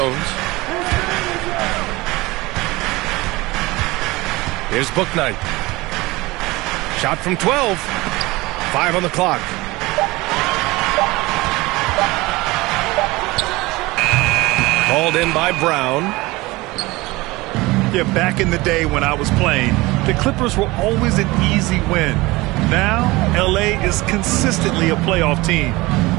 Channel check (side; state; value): left; quieter; 21.4 dB